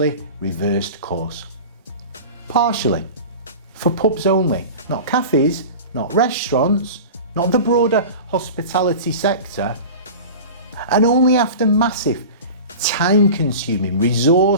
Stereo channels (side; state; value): both; inverted; correlation -0.34